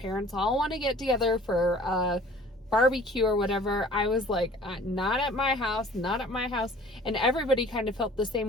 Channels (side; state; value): both; normal; correlation 0.49